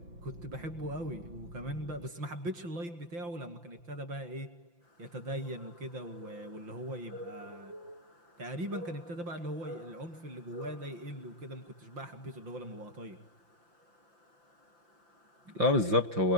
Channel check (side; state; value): left; late; 5.8 ms